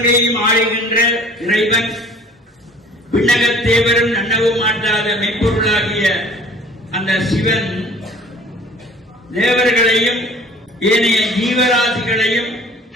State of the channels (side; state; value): both; normal; correlation 0.49